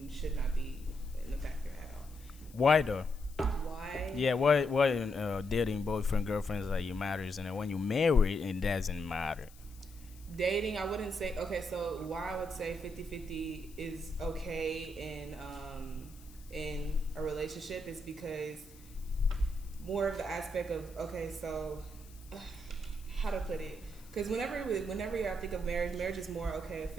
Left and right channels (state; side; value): noise; left; hiss, 23 dB below the sound